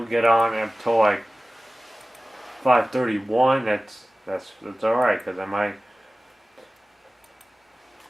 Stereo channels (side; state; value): both; normal; correlation 0.96